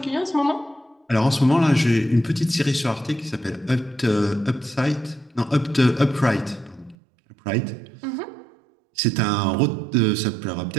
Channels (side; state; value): left; drops out; at 7.0 s